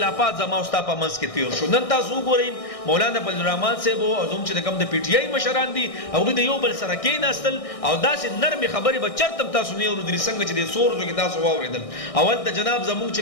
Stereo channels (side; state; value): right; late; 1.6 ms